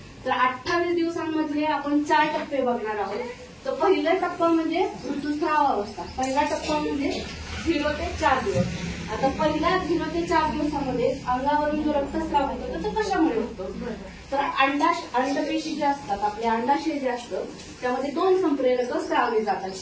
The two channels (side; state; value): both; identical; correlation 1.00